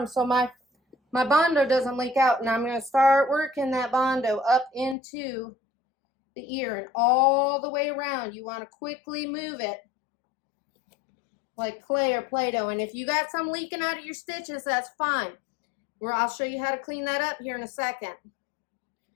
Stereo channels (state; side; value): drops out; right; at 5.0 s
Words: so my Bondo doesn't leak out. And I'm going to start working that Bondo up into the ear and all the way around. You want to quickly move it like clay or Play-Doh. And if you got some leaking out of your stitches, that's fine. I'll show you how to clean that up here in a second.